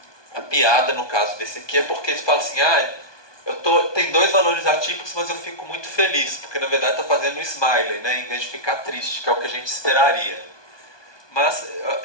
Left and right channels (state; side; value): late; right; 1.2 ms